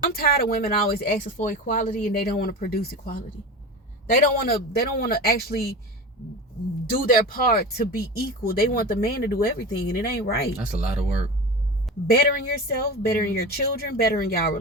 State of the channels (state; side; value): normal; both; correlation 0.29